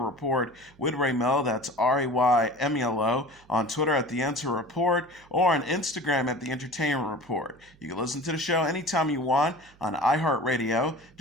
Report with Ray Melo, that's RAYMELO, on Twitter at The Enter Report, or on Instagram at The Entertainment Report. You can listen to the show anytime you want on iHeartRadio.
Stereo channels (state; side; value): noise; right; hum, 28 dB below the sound